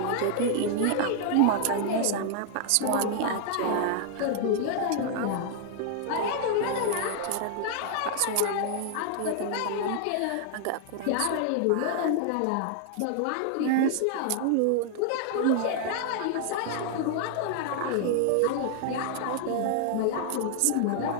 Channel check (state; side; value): different; both; correlation 0.00